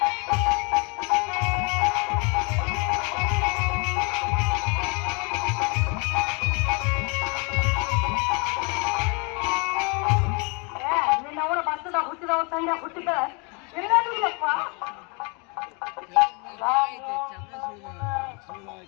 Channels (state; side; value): quieter; right; 32.5 dB